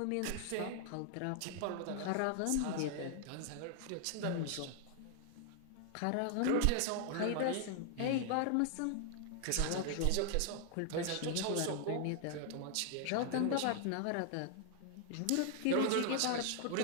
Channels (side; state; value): both; different; correlation 0.00